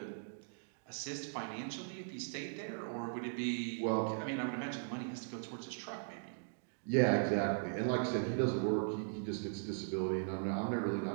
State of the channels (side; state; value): left; silent; digital silence